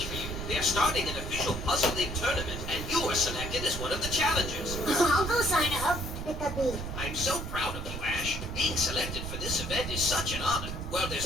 for you. They're starting an official Puzzle League tournament, and you were selected as one of the challengers. I'll go sign up. I'm so proud of you, Ash. Being selected for this event is such an honor. Well,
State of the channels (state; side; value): noise; right; rumble, 6 dB below the sound